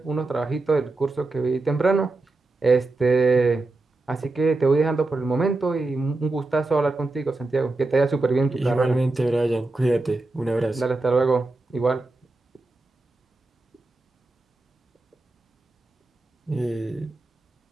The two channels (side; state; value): left; quieter; 3.2 dB